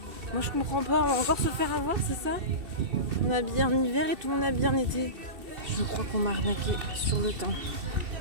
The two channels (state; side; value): late; left; 2.7 ms